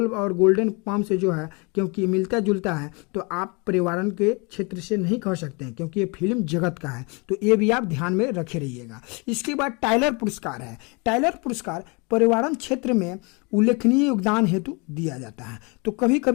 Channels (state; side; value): quieter; right; 30.2 dB